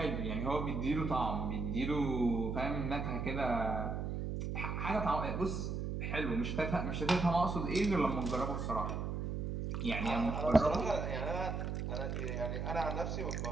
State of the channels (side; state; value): right; noise; hum, 2 dB below the sound